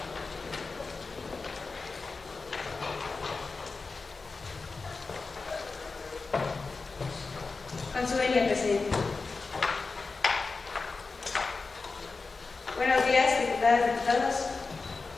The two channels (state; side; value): quieter; right; 4.1 dB